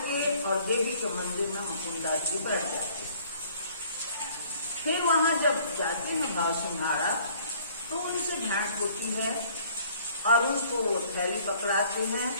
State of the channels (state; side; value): inverted; both; correlation -0.57